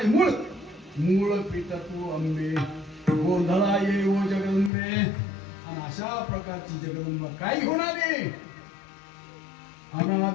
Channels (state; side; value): drops out; right; at 4.7 s